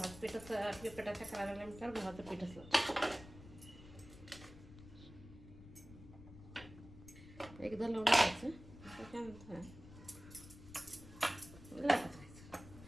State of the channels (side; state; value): left; noise; rumble, 16 dB below the sound